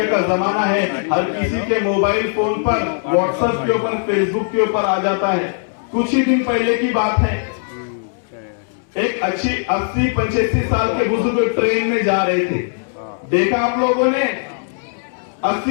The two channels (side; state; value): right; silent; 67 dB below the other